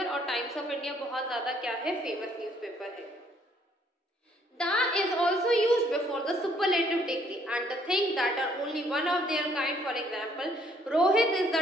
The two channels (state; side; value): normal; both; correlation 0.65